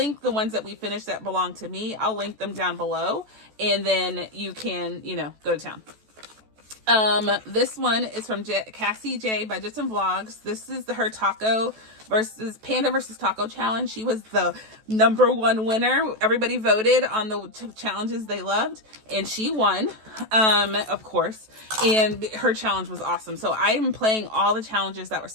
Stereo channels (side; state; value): left; late; 14 ms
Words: the ones that we finished that belong to me. I'll link them down below, and then you can, go to town. This one is from Cassie J Budgets and Vlogs. This is her Panda versus Taco challenge. She was the #1 winner. Everybody voted on the challenges they loved, and she won, of course, and her challenge was awesome. So I am playing all the challenges that were